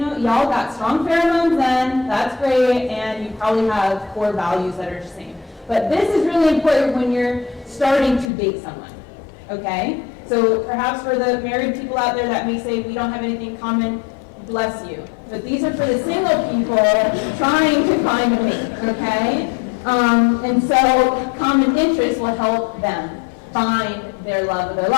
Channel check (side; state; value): right; drops out; at 8.3 s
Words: y'all got strong pheromones then, that's great, and you probably have core values that are the same. But this is really important when you're starting to date someone, okay? So perhaps for the married people out there that may say we don't have anything in common, bless you. but these are for the single people trying to find a mate, okay? And so common interests will help them find their love of their